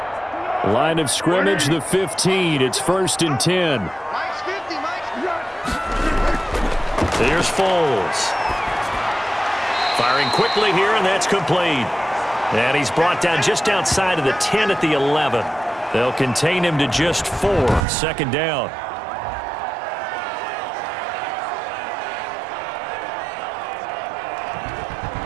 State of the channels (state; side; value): drops out; left; at 17.9 s